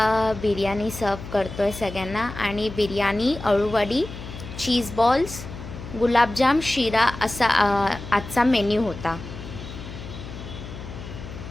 बिर्याणी सर्व करतो आहे सगळ्यांना. आणि बिर्याणी, अळूवडी, चीज बॉल्स, गुलाबजाम, शिरा असा आजचा मेन्यू होता.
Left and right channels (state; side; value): noise; left; hum, 11 dB below the sound